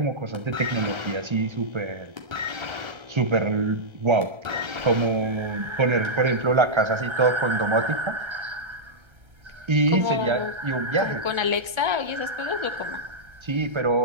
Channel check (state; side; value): late; left; 1.3 ms